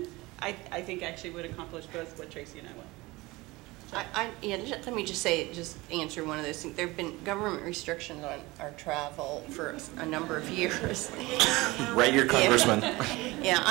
I think actually would accomplish both what Tracy and I want. Let me just answer one of those things. There have been government restrictions on our travel for a number of years. Write your congressman. Yeah,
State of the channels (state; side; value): quieter; left; 21.6 dB